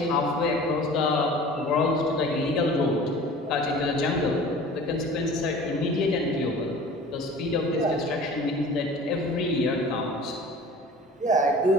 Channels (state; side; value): normal; both; correlation 0.43